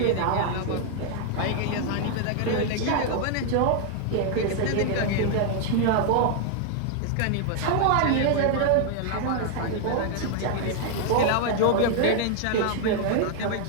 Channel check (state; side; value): different; both; correlation 0.00